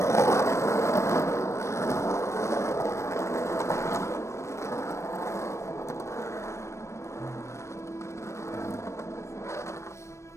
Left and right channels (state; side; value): late; right; 0.14 ms